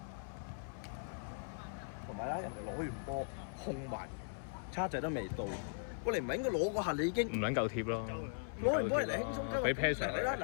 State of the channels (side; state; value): right; silent; 52 dB below the other